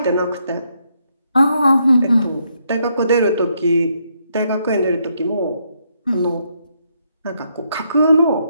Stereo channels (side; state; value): both; inverted; correlation -0.76